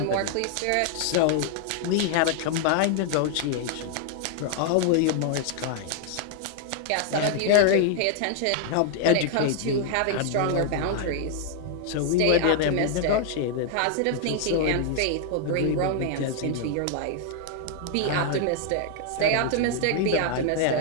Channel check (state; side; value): different; both; correlation 0.00